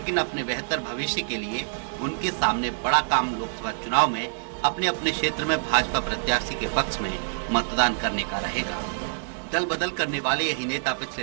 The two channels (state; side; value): silent; left; digital silence